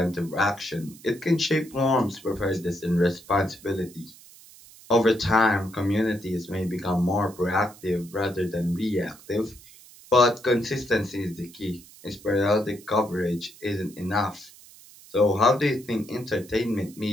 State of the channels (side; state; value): right; noise; hiss, 22 dB below the sound